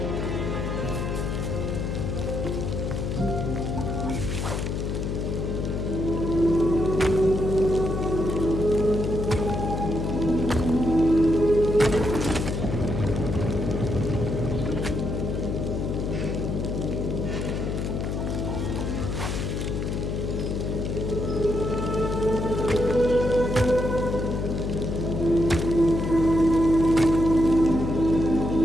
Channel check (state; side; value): noise; left; hum, 2 dB below the sound